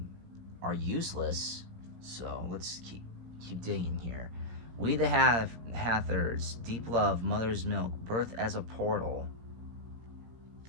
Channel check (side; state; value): left; late; 17 ms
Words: useless. So let's keep digging here. We the Hathors, deep love, mother's milk, birth as a portal.